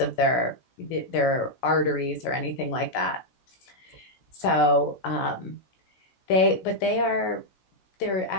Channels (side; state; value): right; late; 16 ms